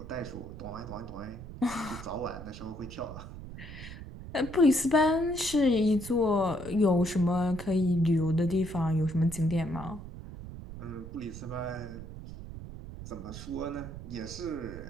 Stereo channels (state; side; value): noise; right; rumble, 12 dB below the sound